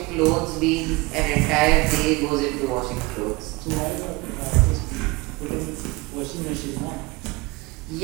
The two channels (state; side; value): quieter; left; 24.0 dB